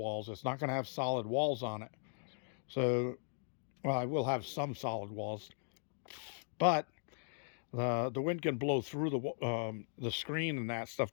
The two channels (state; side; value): silent; right; digital silence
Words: It's not going to have solid walls on it. So, well, I will have some solid walls, but the wind can blow through the screen and that stuff